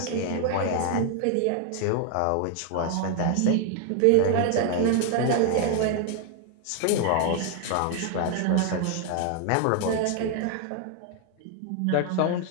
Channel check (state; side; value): different; both; correlation 0.00